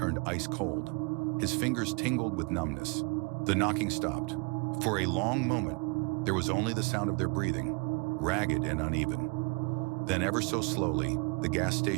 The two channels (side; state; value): left; quieter; 32.3 dB